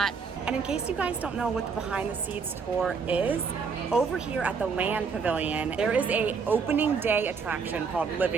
And in case you guys don't know what the Behind the Seeds tour is, over here at the Land Pavilion, there is a opening day attraction called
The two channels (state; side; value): quieter; left; 5.5 dB